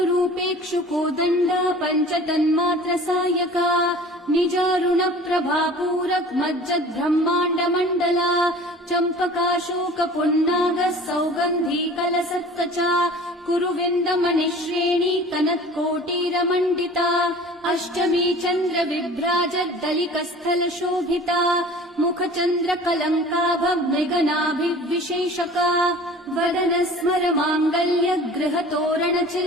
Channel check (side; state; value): both; normal; correlation 0.44